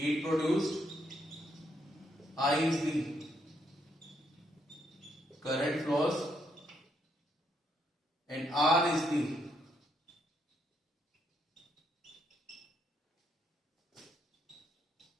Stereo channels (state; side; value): normal; both; correlation 0.76